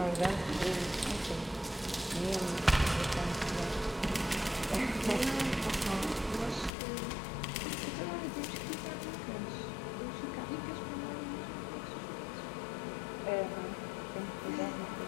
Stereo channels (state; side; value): drops out; right; at 6.7 s